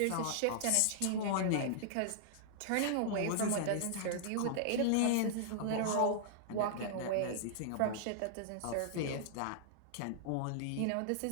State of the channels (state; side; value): different; both; correlation -0.01